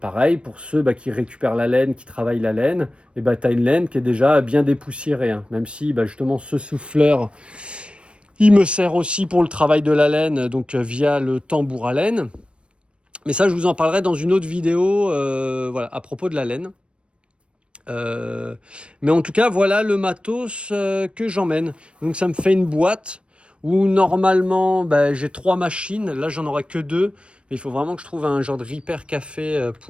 pour ceux qui récupèrent la laine, qui travaillent la laine, et bah, tu as une laine qui est déjà bien dépoussiérée, hein. Même si justement ce souffleur, il me sert aussi pour le travail de la laine, donc via le tambour à laine. Mais ça, je vous en parlerai dans une autre vidéo voilà, à propos de la laine. Mais en tout cas, voilà le matos que j'emmène. Donc ça me fait une boîte où normalement j'ai 3 machines. Là, j'en aurai que 2. Mais il faut vraiment que je trouve un genre de repair café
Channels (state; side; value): late; left; 0.058 ms